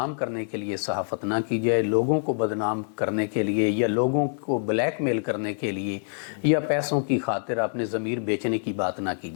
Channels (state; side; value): silent; right; 61 dB below the other